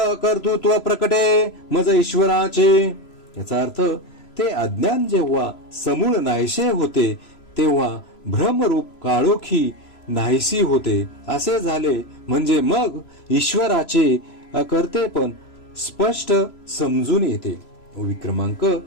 कर्तृत्व प्रकटे मज ईश्वराचे. याचा अर्थ ते अज्ञान जेव्हा समूळ नाहीसे होते तेव्हा भ्रमरूप काळोखी नाहीसी होते असे झाले, म्हणजे मग ईश्वराचे अकर्तेपण स्पष्ट समजून येते. ओवी क्रमांक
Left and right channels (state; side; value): late; right; 3.0 ms